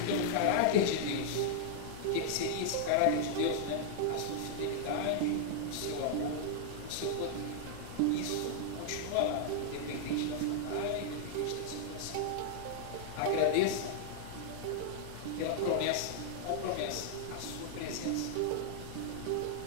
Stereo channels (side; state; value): both; different; correlation -0.01